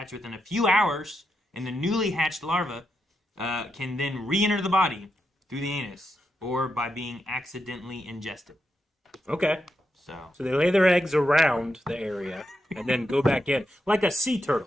within a few hours, and the newly hatched larva can then re-enter the body through the anus or by being accidentally ingested. Okay. So they lay their eggs around the area and then go back in. Like a sea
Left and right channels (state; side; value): normal; both; correlation 0.85